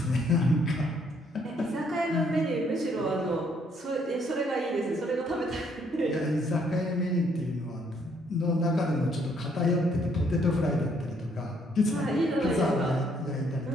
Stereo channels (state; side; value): normal; both; correlation 0.68